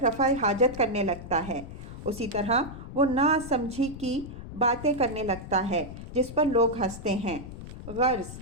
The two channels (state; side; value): noise; left; rumble, 12 dB below the sound